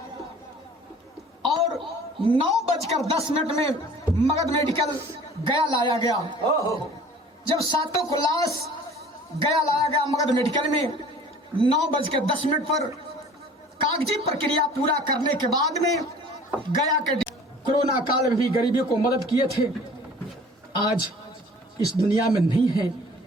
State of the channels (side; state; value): both; normal; correlation 0.48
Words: और 9:10 में मगध मेडिकल गया लाया गया। जब सातों को लाश गया लाया गया मगध मेडिकल में 9:10 पर कागजी प्रक्रिया पूरा करने के बाद में गया के कोरोना काल में भी गरीबियों को मदद किए थे, आज इस दुनिया में नहीं है,